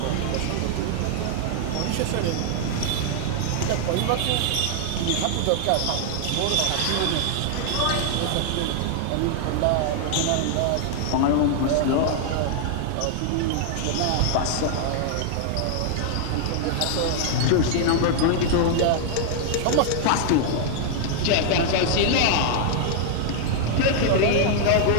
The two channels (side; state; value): both; different; correlation -0.01